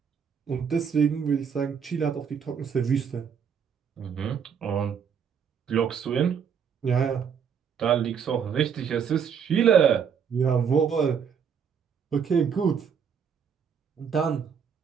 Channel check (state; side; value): quieter; left; 7.1 dB